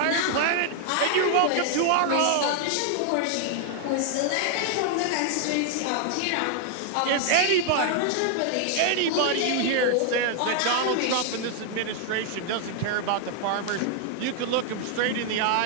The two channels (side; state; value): both; different; correlation 0.00